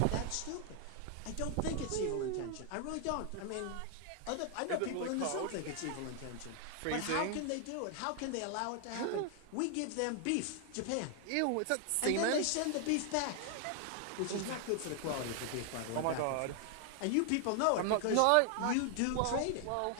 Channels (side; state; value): both; different; correlation 0.00